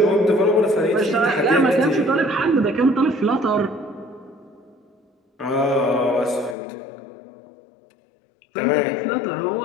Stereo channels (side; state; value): right; drops out; at 6.6 s